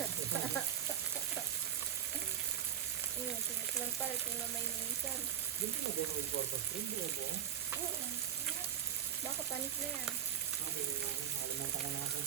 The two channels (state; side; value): quieter; left; 9.4 dB